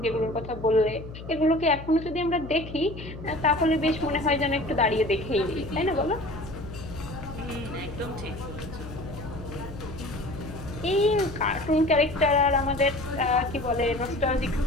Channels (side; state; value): left; noise; hum, 12 dB below the sound